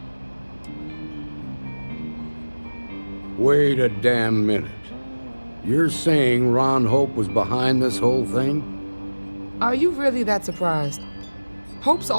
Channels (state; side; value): inverted; both; correlation -1.00